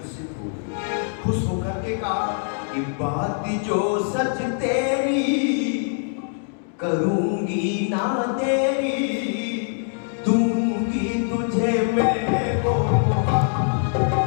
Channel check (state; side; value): silent; right; 56 dB below the other